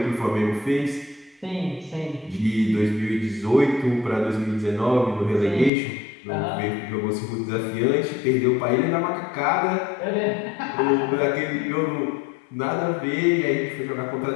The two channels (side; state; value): right; drops out; at 5.7 s